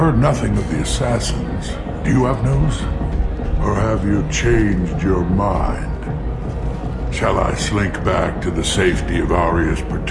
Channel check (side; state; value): both; identical; correlation 1.00